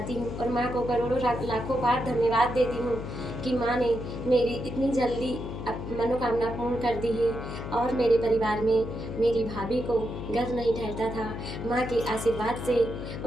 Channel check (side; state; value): left; noise; hum, 7 dB below the sound